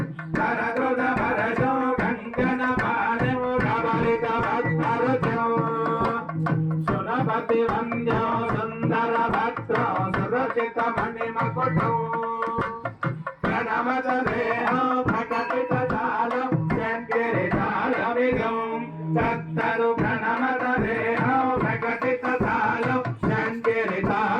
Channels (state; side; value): identical; both; correlation 1.00